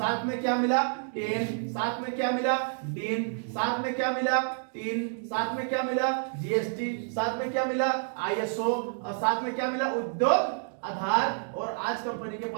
में क्या मिला? टेन, साथ में क्या मिला? डीन, साथ में क्या मिला? 3, साथ में क्या मिला? जीएसटी, साथ में क्या मिला? आईएसओ, और साथ में क्या मिला? उद्योग आधार। और आज कंपनी के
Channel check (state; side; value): silent; left; digital silence